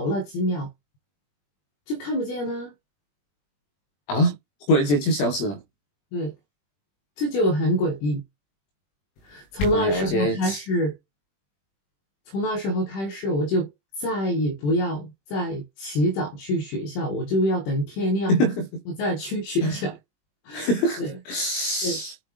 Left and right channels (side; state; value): right; late; 21 ms